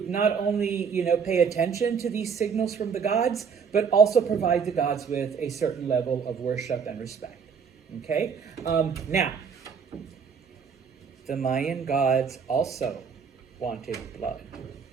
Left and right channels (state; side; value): quieter; left; 6.3 dB